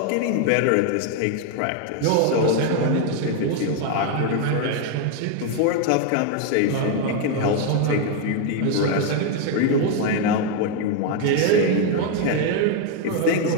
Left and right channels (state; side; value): different; both; correlation 0.01